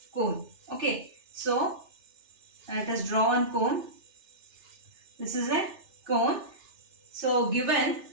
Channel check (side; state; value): left; late; 3.3 ms